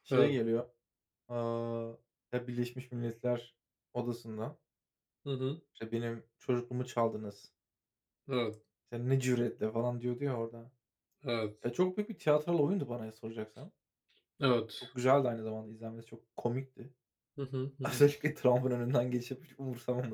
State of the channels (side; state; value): both; identical; correlation 1.00